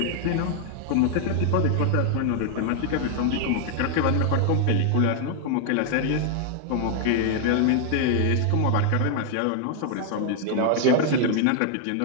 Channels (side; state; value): both; different; correlation 0.00